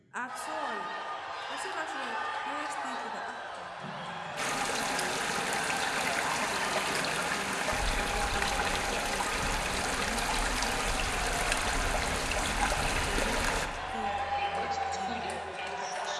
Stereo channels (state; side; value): identical; both; correlation 1.00